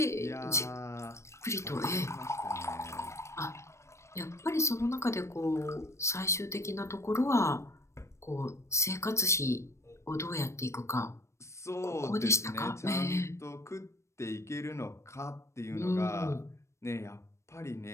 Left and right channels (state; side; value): late; right; 0.13 ms